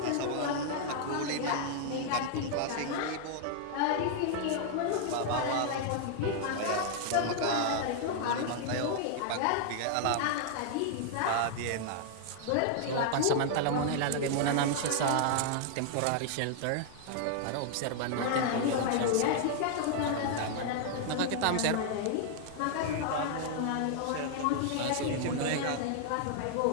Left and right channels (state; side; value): different; both; correlation 0.00